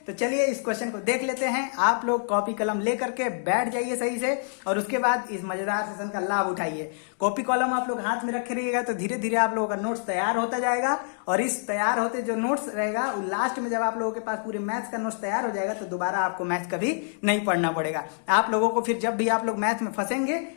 तो चलिए इस क्वेश्चन को देख लेते हैं। आप लोग कॉपी कलम लेकर के बैठ जाइए सही से और उसके बाद इस मजेदार सेशन का लाभ उठाइए। कॉपी कलम आप लोग हाथ में रखे रहिएगा तो धीरे धीरे आप लोगों का नोट्स तैयार होता जाएगा। और इस तैयार होते जो नोट्स रहेगा लास्ट में जब आप लोगों के पास पूरे मैथ्स का नोट्स तैयार हो जाएगा तो दोबारा आपको मैथ्स कभी नहीं पढ़ना पड़ेगा। आप लोगों को फिर जब भी आप लोग मैथ्स में फंसेंगे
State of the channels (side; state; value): right; silent; digital silence